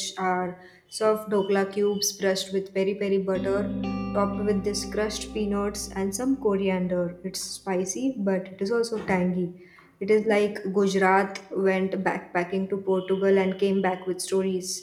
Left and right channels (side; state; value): both; identical; correlation 1.00